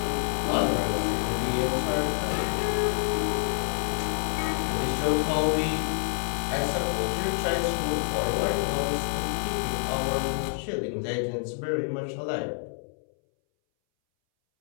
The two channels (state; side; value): silent; right; 60 dB below the other